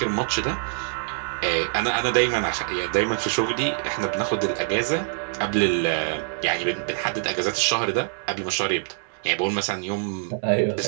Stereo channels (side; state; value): left; silent; 61 dB below the other